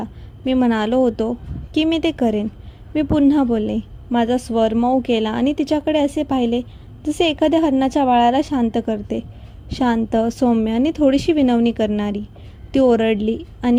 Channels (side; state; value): both; identical; correlation 1.00